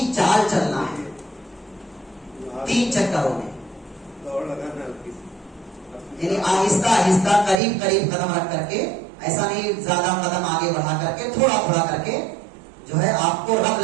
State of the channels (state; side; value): drops out; left; at 7.6 s